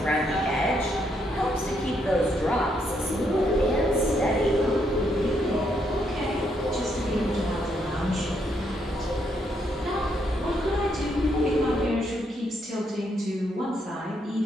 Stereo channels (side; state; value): both; normal; correlation 0.75